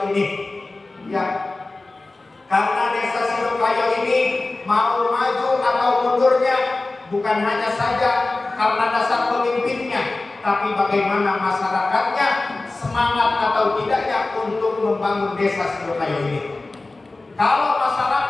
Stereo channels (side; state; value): right; quieter; 3.2 dB